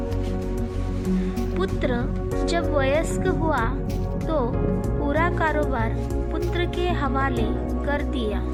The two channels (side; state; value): both; identical; correlation 1.00